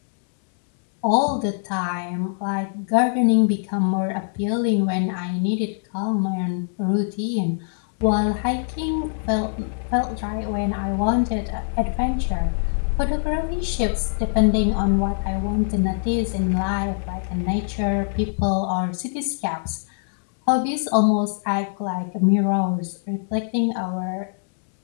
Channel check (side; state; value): right; silent; digital silence